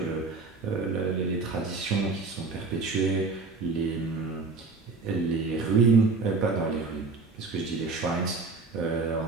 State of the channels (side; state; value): left; quieter; 4.1 dB